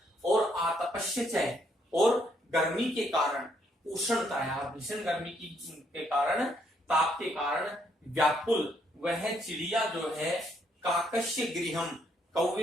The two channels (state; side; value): normal; both; correlation 0.72